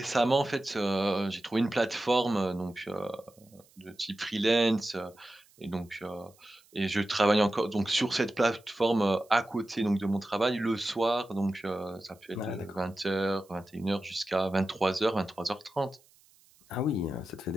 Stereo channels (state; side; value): noise; right; hiss, 30 dB below the sound